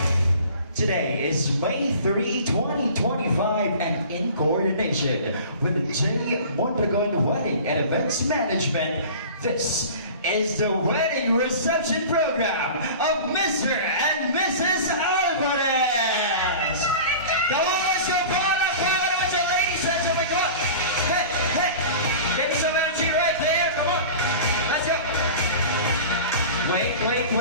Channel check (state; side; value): inverted; both; correlation -0.39